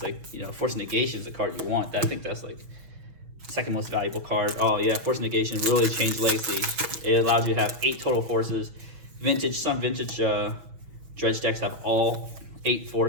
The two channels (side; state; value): left; late; 6.1 ms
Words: like, you know, Force Negation is the card you want. I think that's like second most valuable card. Oh yeah, Force Negation really changed Legacy. It allowed you to have 8 total forces. Some vintage Dredge decks have all 8